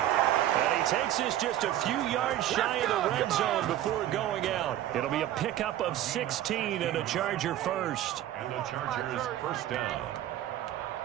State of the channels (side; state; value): left; quieter; 12.7 dB